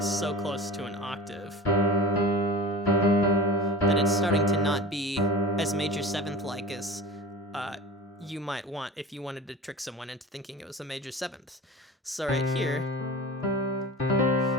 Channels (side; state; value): both; normal; correlation 0.35